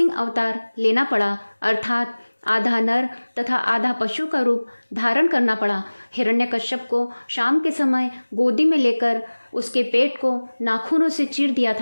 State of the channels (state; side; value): inverted; both; correlation -1.00